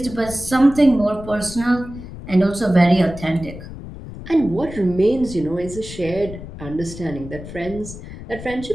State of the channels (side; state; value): left; noise; rumble, 12 dB below the sound